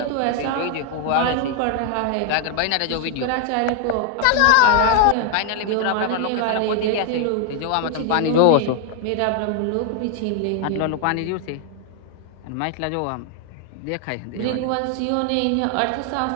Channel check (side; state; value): both; different; correlation 0.00